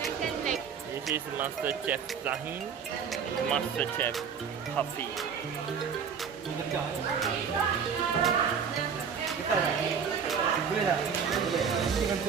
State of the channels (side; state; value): left; quieter; 6.8 dB